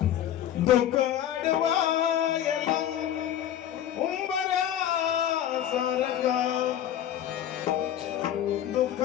दुःख अडवायला उंबऱ्या सारखा, दुःख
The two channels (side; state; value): right; quieter; 10.8 dB